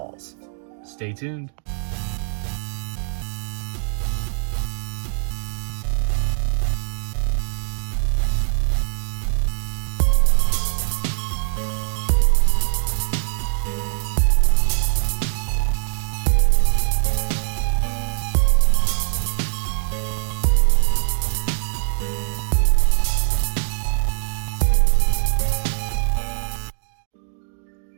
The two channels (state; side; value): silent; left; digital silence